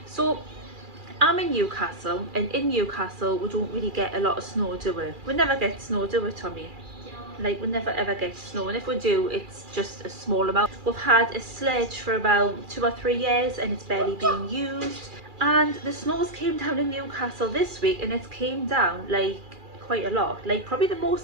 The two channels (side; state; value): left; late; 2.4 ms